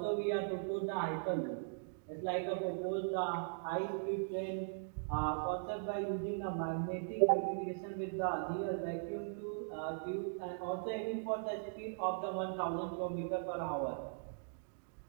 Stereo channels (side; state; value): left; silent; digital silence